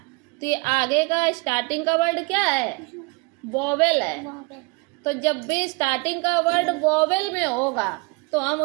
तो ये आगे का स्टार्टिंग का वर्ड क्या है? वोवेल है। तो जब भी स्टार्टिंग का वर्ड वोवेल में होगा तो हम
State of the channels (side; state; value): left; quieter; 29.5 dB